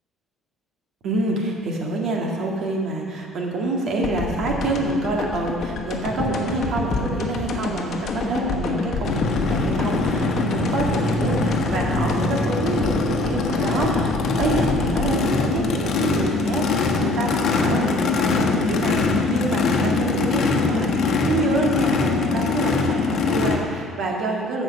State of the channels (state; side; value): normal; both; correlation 0.52